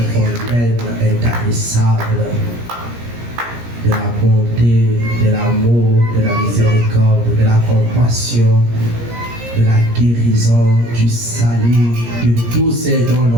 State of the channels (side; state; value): left; late; 17 ms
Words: fontaine intarissable de la bonté, de l'amour, de la miséricorde, de la compassion, de la guérison, du salut, de tout ce dont